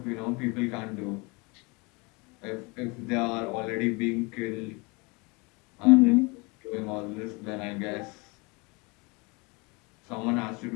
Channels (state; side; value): quieter; right; 28.0 dB